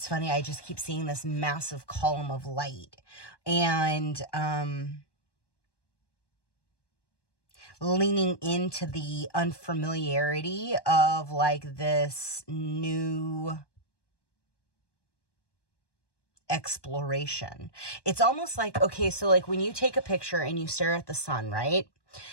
funny, I just keep seeing this massive column of light, and leaning into the unfamiliarity of like this new exploration. It's almost like, okay, so like when you take a picture and you stare at the sun, right?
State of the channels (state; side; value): late; right; 1.2 ms